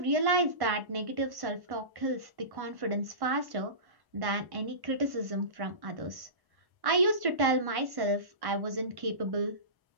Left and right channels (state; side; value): late; left; 1.1 ms